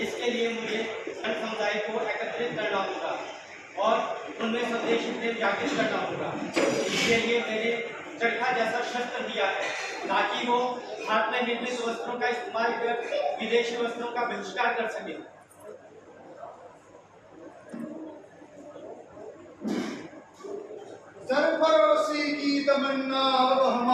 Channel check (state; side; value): identical; both; correlation 1.00